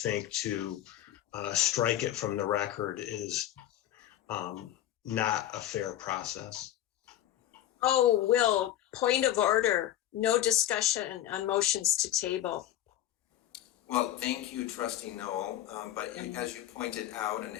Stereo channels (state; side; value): quieter; right; 12.7 dB